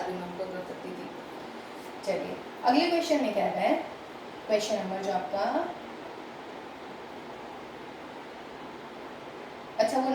भी मैं उनको कर सकती थी। चलिए अगले क्वेश्चन में क्या है, क्वेश्चन नंबर जो आपका, अच्छा वो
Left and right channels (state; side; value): identical; both; correlation 1.00